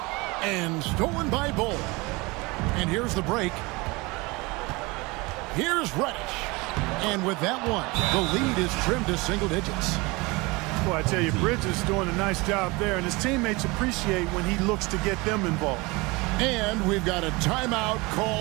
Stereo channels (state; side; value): quieter; left; 24.6 dB